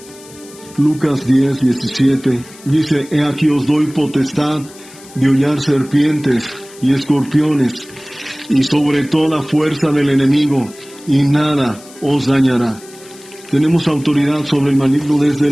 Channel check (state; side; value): noise; left; hiss, 21 dB below the sound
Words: dice: he aquí os doy potestad de hollar serpientes y escorpiones, y sobre toda fuerza del enemigo, y nada os dañará. Tenemos autoridad sobre el maligno, desde